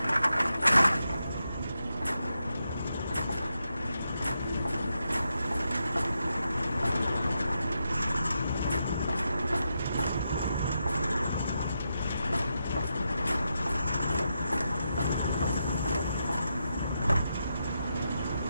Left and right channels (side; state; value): both; inverted; correlation -0.85